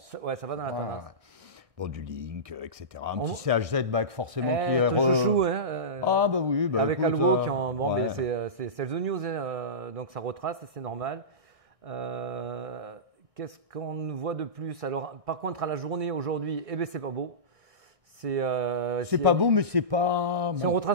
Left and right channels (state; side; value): late; left; 1.6 ms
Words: Ouais, ça va dans la tendance. Bon, du Link, etc. Un petit CHZ back forcément qui est... chouchou, hein, Ah bah oui, bah avec écoute, Algo qui ont... Bon, ouais. mais c'est the news, hein, donc ça retrace, c'est normal. Qu'est-ce qu'on voit de plus? Alors, par contre, à la journée aujourd'hui, eh ben c'est pas beau. C'est pas beau, mais c'est pas... C'est un